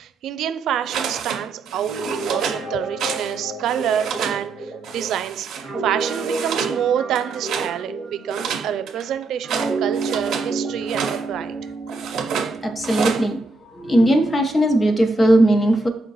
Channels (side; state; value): left; quieter; 3.3 dB